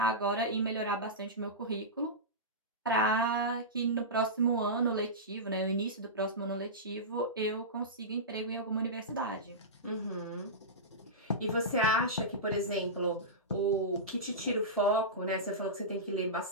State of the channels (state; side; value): normal; both; correlation -0.17